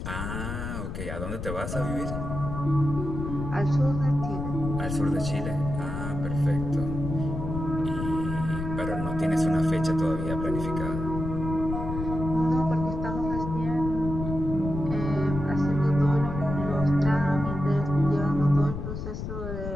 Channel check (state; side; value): noise; left; rumble, 5 dB below the sound